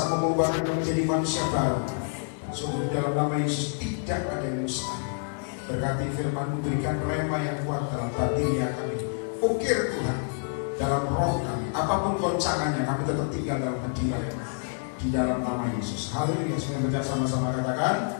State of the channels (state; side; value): silent; right; digital silence